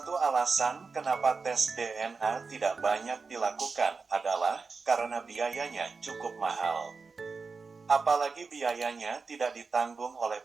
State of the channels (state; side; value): quieter; left; 4.6 dB